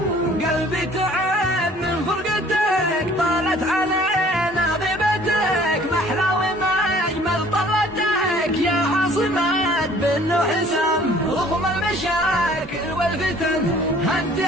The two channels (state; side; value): normal; both; correlation 0.54